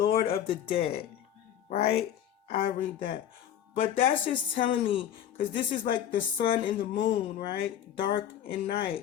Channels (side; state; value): right; quieter; 10.4 dB